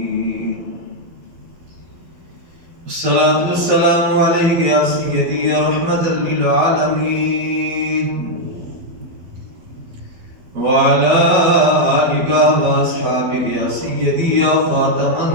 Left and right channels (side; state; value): left; late; 12 ms